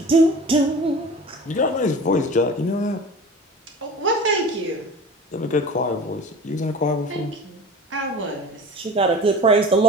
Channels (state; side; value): normal; both; correlation 0.38